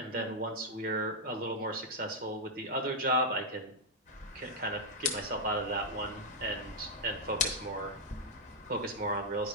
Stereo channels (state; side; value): normal; both; correlation -0.05